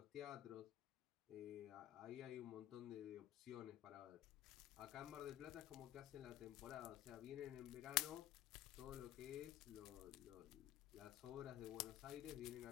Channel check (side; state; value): right; quieter; 13.5 dB